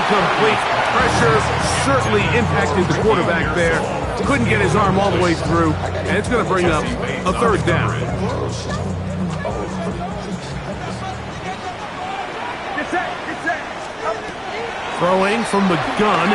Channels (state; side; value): identical; both; correlation 1.00